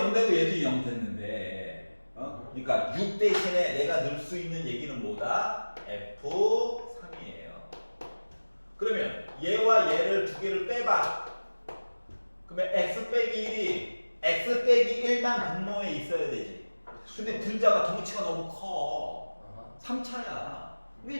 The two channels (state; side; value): inverted; both; correlation -1.00